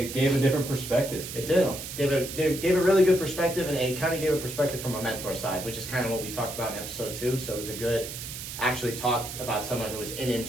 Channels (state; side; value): noise; right; hiss, 9 dB below the sound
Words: gave a different perspective. It did. Gave a really good perspective, and it kind of gave a perspective from a mentor side, which is kind of what we talked about in episode 2. So it was a good, actually talk about someone who was in